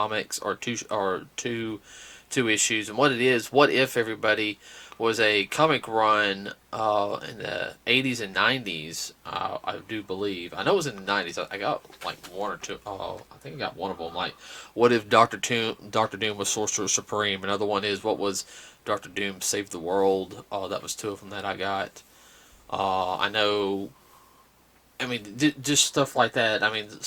or two issues, and what it is, what if everybody was a comic run in the 80s and 90s. I do believe. I know it was in the 90s. I got like one or two. I think I got one of them. Like, what if Doctor Doom was Sorcerer Supreme? Another one is, what was Doctor Doom Save the World? That was two of them that I got. I know. I mean, just stuff like that. I mean,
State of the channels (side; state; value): both; identical; correlation 1.00